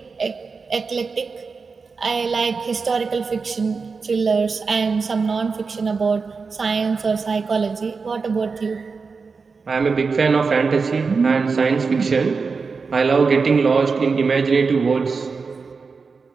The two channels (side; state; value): left; quieter; 4.8 dB